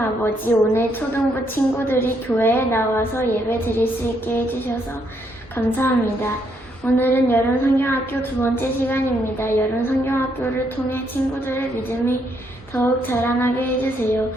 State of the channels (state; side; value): normal; both; correlation 0.74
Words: 아버지, 오늘 초등부 친구들이 교회에 나와서 예배 드릴 수 있게 해주셔서 감사합니다. 오늘은 여름 성경학교 두 번째 시간입니다. 여름 성경학교를 통해 친구들의 믿음이 더욱 자라나게 해주세요.